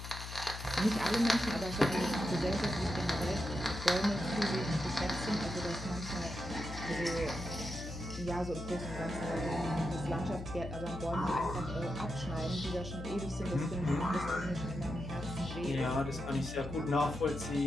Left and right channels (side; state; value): left; noise; hum, 9 dB below the sound